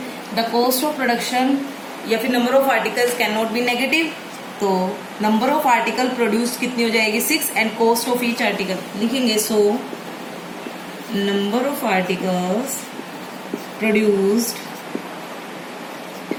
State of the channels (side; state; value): both; identical; correlation 1.00